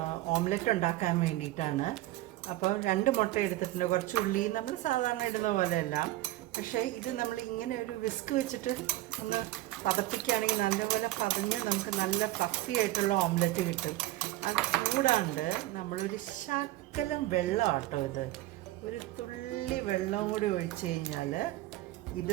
ഓംലെറ്റ് ഉണ്ടാക്കാൻ വേണ്ടിയിട്ടാണ്. അപ്പോൾ 2 മുട്ട എടുത്തിട്ടുണ്ട്. കുറച്ച് ഉള്ളി നമ്മൾ സാധാരണ ഇടുന്ന പോലെയല്ല. പക്ഷേ ഇത് നമ്മൾ ഇങ്ങനെ ഒരു വിസ്ക് വെച്ചിട്ട് ഒന്ന് പതപ്പിക്കുകയാണെങ്കിൽ നല്ലപോലെ പതഞ്ഞ് നമുക്ക് നല്ല ഫ്ലഫി ആയിട്ടുള്ള ഓംലെറ്റ് കിട്ടും. അത് കൂടാണ്ട് നമ്മളൊരു ശകലം വെള്ളമാട്ടോ, ഇത് ഒരു തുള്ളി വെള്ളം കൂടി ഒഴിച്ച് കഴിഞ്ഞാൽ ഇത്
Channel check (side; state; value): left; quieter; 16.4 dB